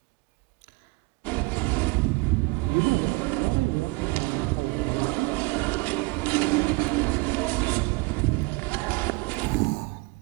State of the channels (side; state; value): left; quieter; 25.7 dB